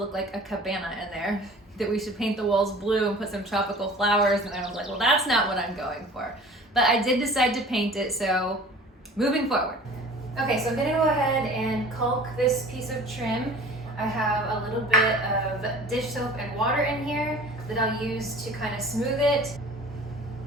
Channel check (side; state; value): both; normal; correlation 0.45